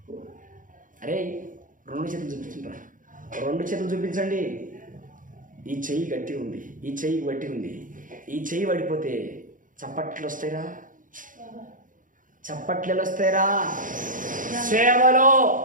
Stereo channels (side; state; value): left; late; 0.39 ms